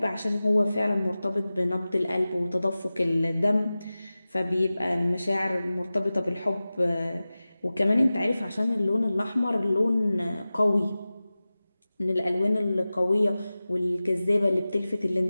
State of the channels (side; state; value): both; inverted; correlation -0.96